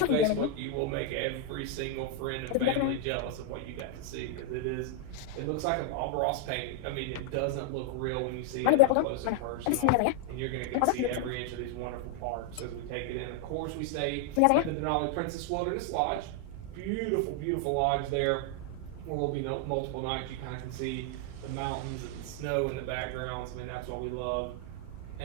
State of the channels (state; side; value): different; both; correlation 0.00